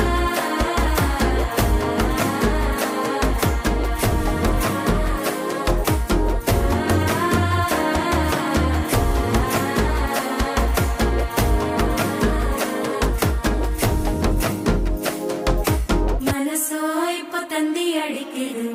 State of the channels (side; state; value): both; identical; correlation 1.00